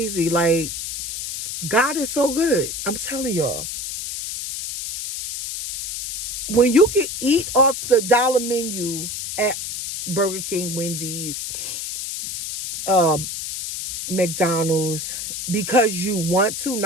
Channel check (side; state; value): left; noise; hiss, 5 dB below the sound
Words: Like, God is so good. I'm telling y'all. When you can eat off the dollar menu at Burger King, Wendy's, uh, McDonald's, because you want to,